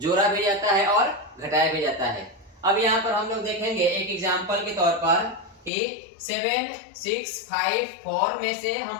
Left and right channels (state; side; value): drops out; right; at 5.7 s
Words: भी जाता है और घटाया भी जाता है। अब यहाँ पर हम लोग देखेंगे एक एग्जाम्पल के तौर पर कि 7 6 5 4 में से